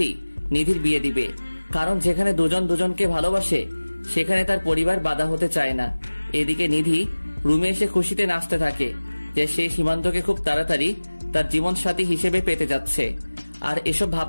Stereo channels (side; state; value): both; inverted; correlation -1.00